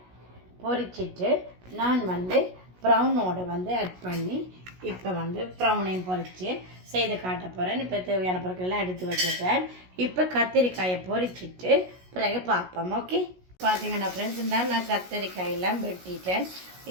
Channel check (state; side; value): late; left; 16 ms